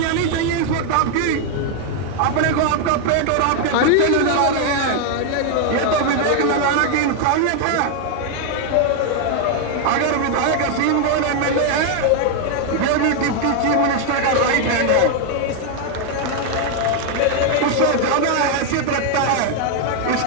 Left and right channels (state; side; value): different; both; correlation 0.00